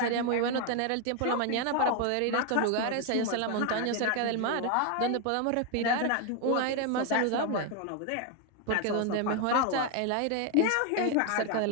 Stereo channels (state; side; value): different; both; correlation 0.01